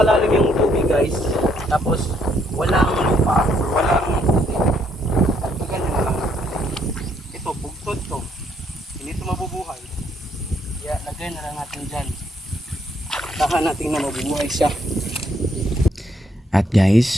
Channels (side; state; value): both; normal; correlation 0.71